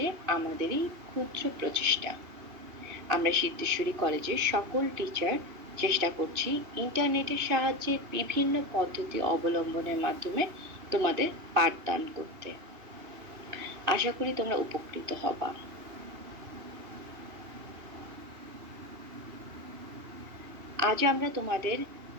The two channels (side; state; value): left; late; 2.8 ms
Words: আমাদেরই ক্ষুদ্র প্রচেষ্টা। আমরা সিদ্ধেশ্বরী কলেজের সকল টিচার চেষ্টা করছি ইন্টারনেটের সাহায্যে বিভিন্ন পদ্ধতি অবলম্বনের মাধ্যমে তোমাদের পাঠদান করতে। আশা করি তোমরা উপকৃত হবা। আজ আমরা তোমাদের